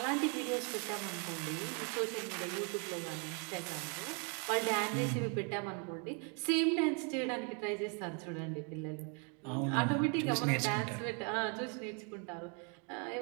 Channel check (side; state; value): left; quieter; 37.0 dB